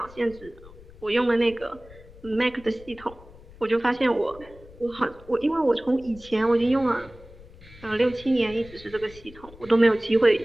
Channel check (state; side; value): noise; left; rumble, 20 dB below the sound